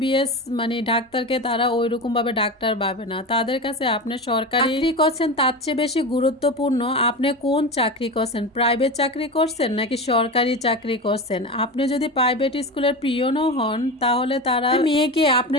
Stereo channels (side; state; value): both; normal; correlation 0.24